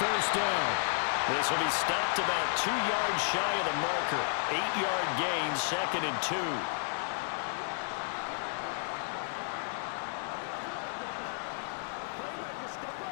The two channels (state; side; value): silent; right; digital silence